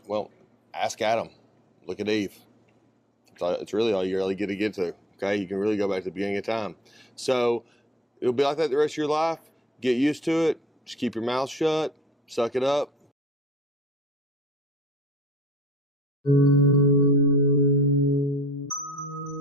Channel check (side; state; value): both; normal; correlation 0.46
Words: well, ask Adam. Look at Eve. It's really all you really get to. Okay, you can really go back to the beginning of time. So it'll be like that the rest of your life. Get used to it. Just keep your mouth shut. Suck it up.